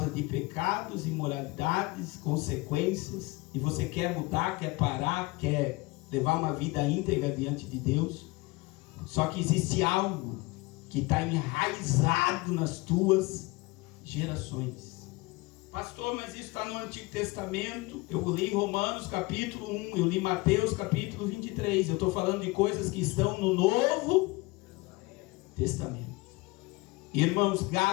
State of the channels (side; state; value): right; quieter; 23.3 dB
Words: de pecados, imoralidades, consequências, e você quer mudar, quer parar, quer levar uma vida íntegra diante de Deus. Só que existe algo que está enraizado nas tuas gerações. Pastor, mas isso está no Antigo Testamento. Eu li Romanos capítulo 1, eu li Mateus capítulo 23. Eu estou falando de coisas que estão no Novo Testamento. Irmãos,